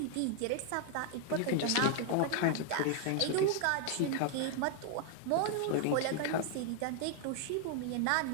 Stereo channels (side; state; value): both; different; correlation 0.00